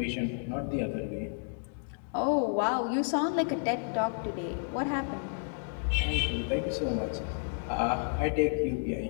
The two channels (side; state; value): right; silent; 57 dB below the other